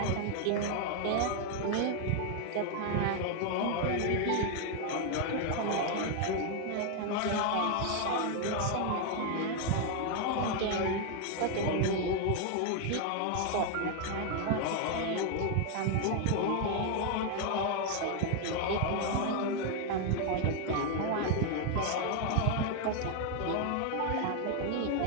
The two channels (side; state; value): both; different; correlation 0.01